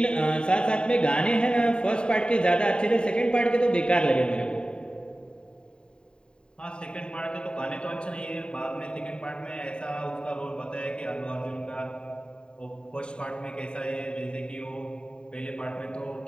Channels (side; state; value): right; late; 0.050 ms